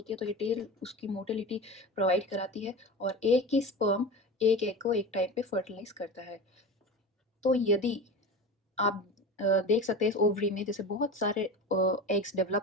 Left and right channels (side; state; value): both; normal; correlation 0.30